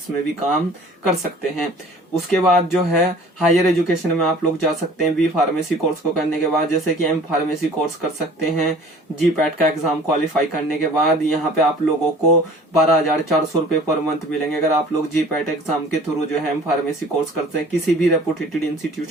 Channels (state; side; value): normal; both; correlation 0.48